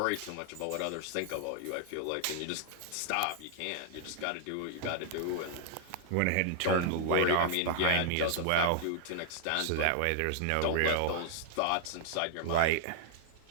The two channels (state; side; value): different; both; correlation -0.01